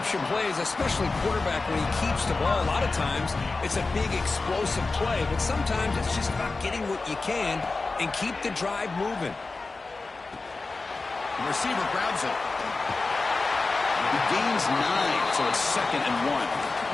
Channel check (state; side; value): quieter; right; 3.7 dB